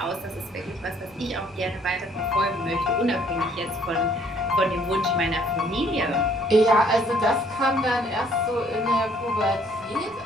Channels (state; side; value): noise; right; rumble, 28 dB below the sound